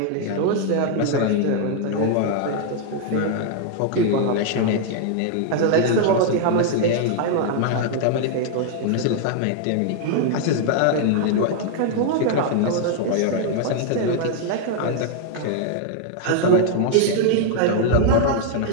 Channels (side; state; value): both; different; correlation 0.00